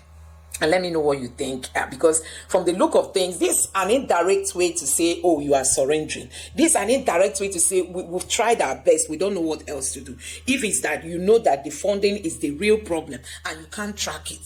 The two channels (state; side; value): identical; both; correlation 1.00